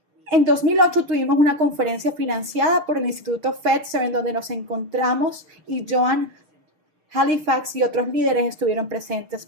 En 2008 tuvimos una conferencia financiada por el Instituto Fetzer en donde nos encontramos y Joan Halifax y otros líderes estuvieron presentes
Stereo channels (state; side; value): late; left; 6.6 ms